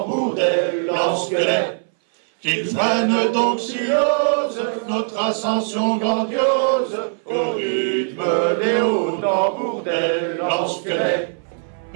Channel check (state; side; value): silent; left; 63 dB below the other